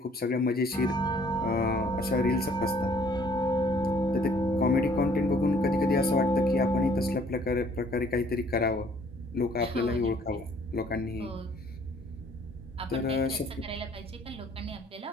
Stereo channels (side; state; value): both; normal; correlation 0.59